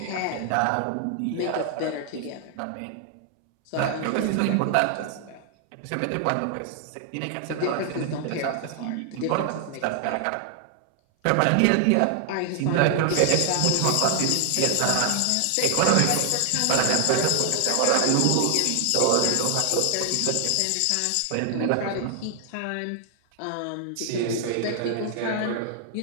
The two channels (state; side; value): different; both; correlation 0.00